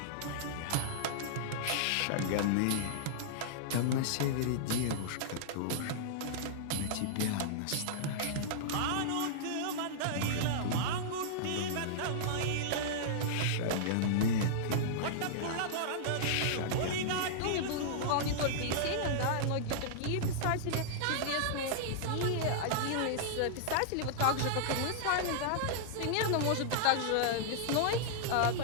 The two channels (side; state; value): both; different; correlation -0.02